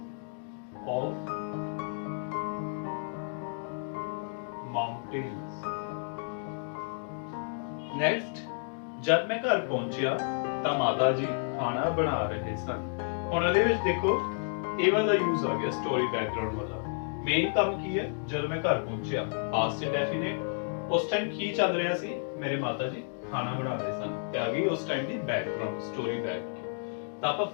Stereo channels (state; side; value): silent; right; digital silence